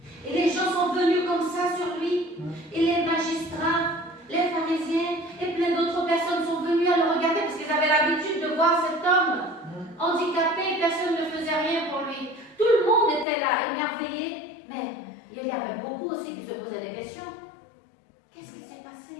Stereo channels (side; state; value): right; drops out; at 13.2 s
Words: Et les gens sont venus comme ça sur lui. Et les magistrats, les pharisiens et plein d'autres personnes sont venus à le regarder parce qu'ils avaient l'habitude de voir cet homme handicapé. Personne ne faisait rien pour lui. Tout le monde était là, émerveillé. Mais il y avait beaucoup aussi qui se posaient des questions. Qu'est-ce qui s'est